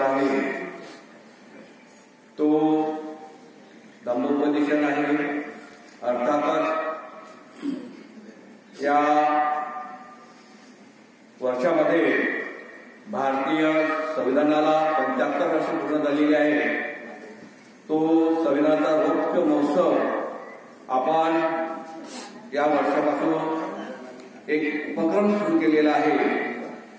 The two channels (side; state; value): both; identical; correlation 1.00